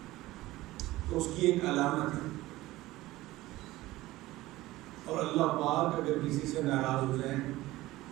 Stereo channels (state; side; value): quieter; left; 17.7 dB